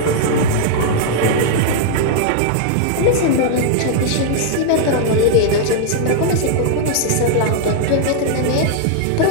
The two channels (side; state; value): both; different; correlation -0.01